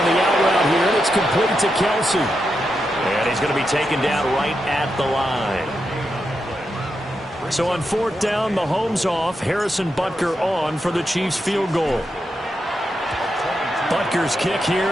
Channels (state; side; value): normal; both; correlation 0.86